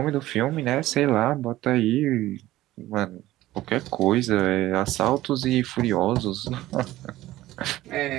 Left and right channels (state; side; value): quieter; left; 15.9 dB